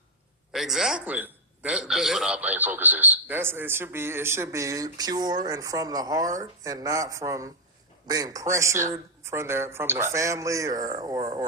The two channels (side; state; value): both; normal; correlation -0.01